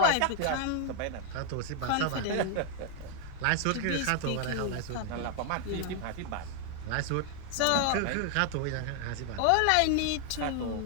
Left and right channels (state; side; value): different; both; correlation 0.00